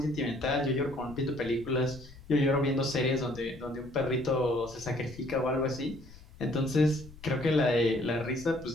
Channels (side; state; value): left; noise; rumble, 19 dB below the sound